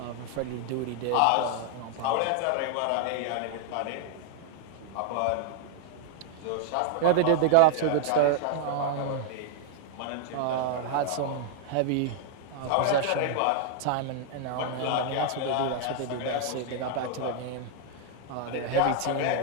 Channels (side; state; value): both; different; correlation 0.00